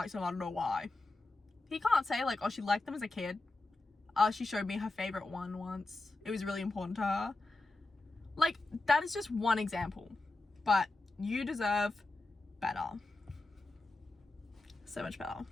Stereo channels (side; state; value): right; quieter; 3.1 dB